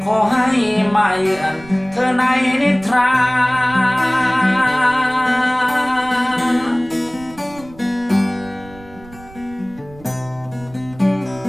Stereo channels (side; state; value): right; noise; rumble, 21 dB below the sound